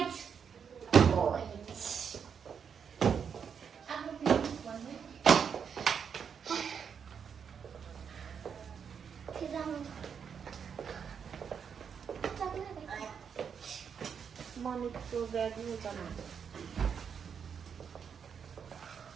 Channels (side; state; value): left; quieter; 7.0 dB